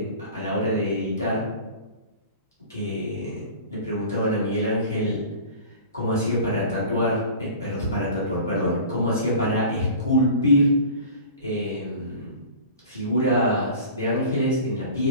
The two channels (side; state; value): both; inverted; correlation -0.39